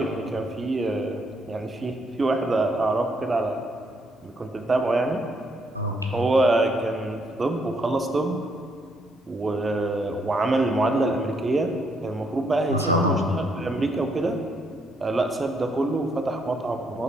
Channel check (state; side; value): normal; both; correlation 0.73